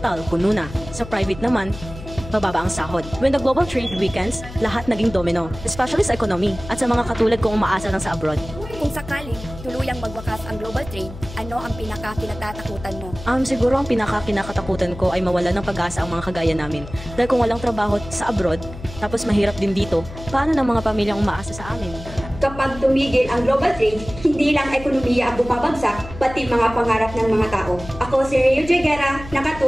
puno na. Sa private naman, mababa ang sahod. When the global trade weakens, lahat naging domino. Especially sa economy at sa mga katulad kong umaasa lang sa abroad. Kung sakaling tuluyang magwakas ang global trade, ano ang pinaka-kinatatakutan mo? Siguro ang pinaka-kinakatakutan ko ay mawala ng pag-asa ang mga kagaya namin. Dahil kung walang trabaho sa abroad, tapos mahirap din dito, paano ng mga pamilyang umaasa sa amin? Kapag tumigil ang global trade, hindi lang ekonomiya ang bumabagsak, pati mga pangarap ng mga tao. Ako si Rio Joy Guerra,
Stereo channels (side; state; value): left; noise; hum, 14 dB below the sound